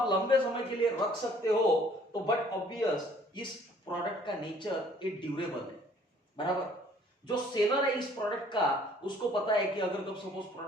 लंबे समय के लिए रख सकते हो तो बट ऑब्वियस इस प्रोडक्ट का नेचर ये ड्यूरेबल है। बराबर। जो सेलर है इस प्रोडक्ट का उसको पता है कि अगर कब सपोज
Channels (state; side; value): normal; both; correlation 0.58